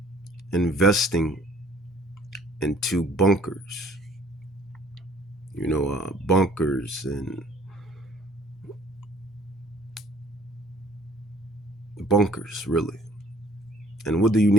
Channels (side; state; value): both; normal; correlation 0.57